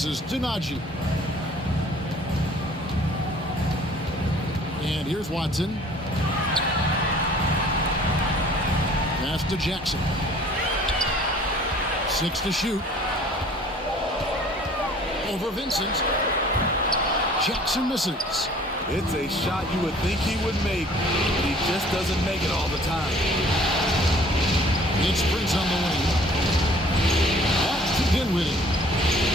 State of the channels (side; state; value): both; normal; correlation 0.53